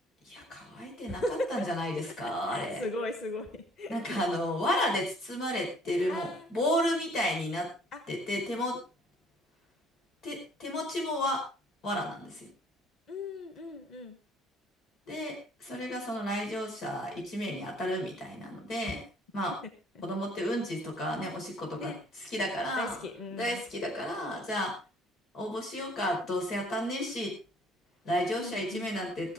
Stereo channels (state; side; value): normal; both; correlation 0.58